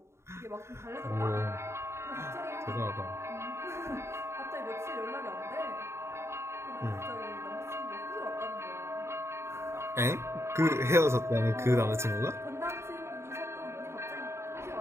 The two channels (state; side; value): late; left; 0.13 ms